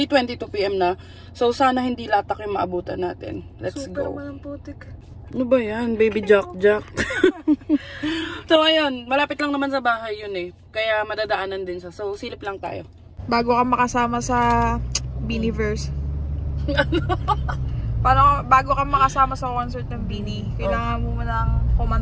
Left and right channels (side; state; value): both; identical; correlation 1.00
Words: PM na. So sana hindi latak yung maabutan natin. Let's Super go. Super naman putik. Ano ba yan? Baby Jack. So ayun, malapit lang naman sa bahay yun eh. Kaya madadaanan din siya. So silip lang tayo. Bago ka makasama sa Beanieverse. Paano, bago ka makasama sa concert ng Beanie, kailangan mo nang